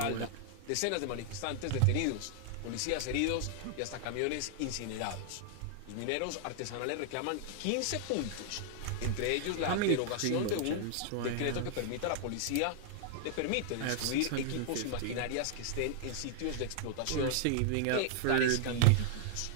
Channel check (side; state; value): both; different; correlation -0.01